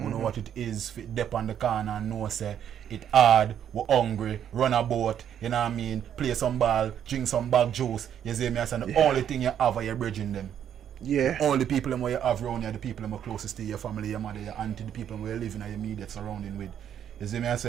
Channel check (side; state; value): left; quieter; 9.5 dB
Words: know what it is, fit dep on the corner and know say it hard, we hungry, run a boat, you know what I mean, play some ball, drink some bag juice, you see me, and the only thing you have are your bridging them. Yeah. The only people you have around you are the people who are closest to your family, your mother, your auntie, the people who you live in your immediate surrounding with. You see me, I